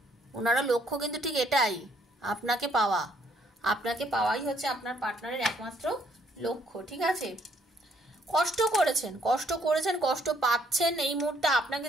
ওনারও লক্ষ্য কিন্তু ঠিক এটাই, আপনাকে পাওয়া, আপনাকে পাওয়াই হচ্ছে আপনার পার্টনারের একমাত্র লক্ষ্য, ঠিক আছে। কষ্ট করেছেন, কষ্ট পাচ্ছেন, এই মুহূর্তে আপনাকে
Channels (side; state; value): both; normal; correlation 0.67